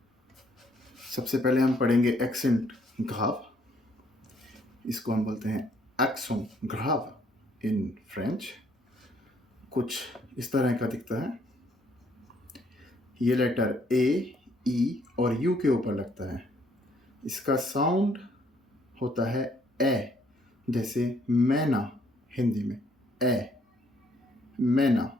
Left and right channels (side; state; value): both; normal; correlation 0.67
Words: सबसे पहले हम पढ़ेंगे एक्सेंट ग्राव। इसको हम बोलते हैं एक्सों ग्राव इन फ्रेंच। कुछ इस तरह का दिखता है। ये लेटर ए, ई और यू के ऊपर लगता है। इसका साउंड होता है ए, जैसे मैना हिंदी में ए, मैना।